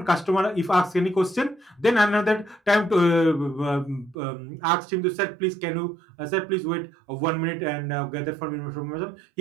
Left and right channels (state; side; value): drops out; left; at 4.2 s